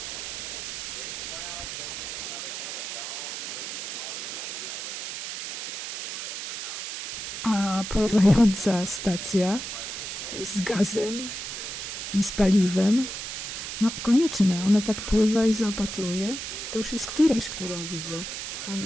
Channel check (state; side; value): noise; right; hiss, 6 dB below the sound